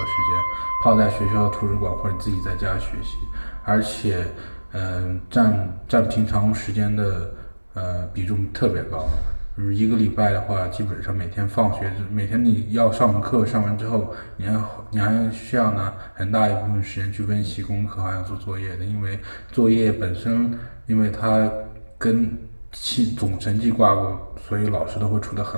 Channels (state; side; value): inverted; both; correlation -1.00